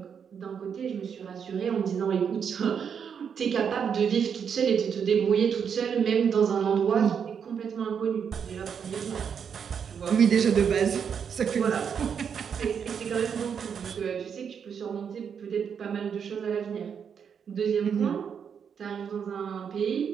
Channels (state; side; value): quieter; left; 7.2 dB